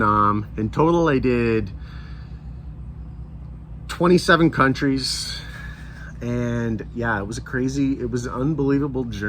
In total, I did 27 countries. And yeah, it was an unbelievable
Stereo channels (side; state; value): both; identical; correlation 1.00